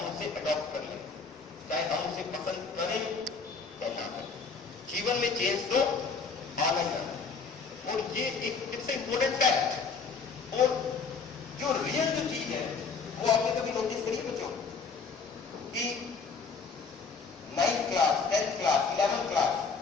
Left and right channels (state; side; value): quieter; right; 5.0 dB